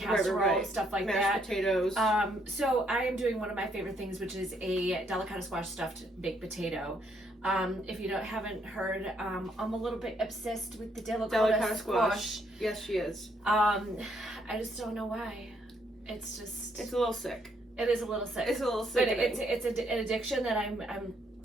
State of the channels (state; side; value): normal; both; correlation 0.71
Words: stuff like Mashed that. potatoes. So I am doing one of my favorite things, which is a delicata squash stuffed baked potato. If you haven't heard, I'm a little bit obsessed with the delicata squash. Yes, she is. I just don't know why. It's a little sick. It is a little sick. It's a little sick. But it's an addiction that